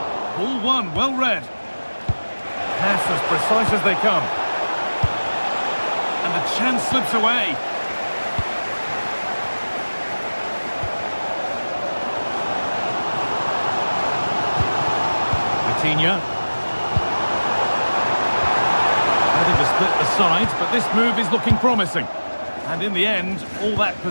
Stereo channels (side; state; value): both; inverted; correlation -1.00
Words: Ball one, well read. Pass as precise as they come. And the chance slips away. Vitinha. Ready to split the sides, but this move is looking promising. And in the end, all that